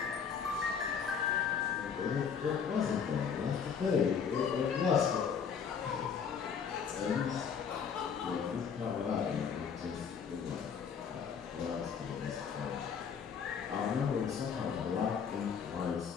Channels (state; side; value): quieter; right; 6.8 dB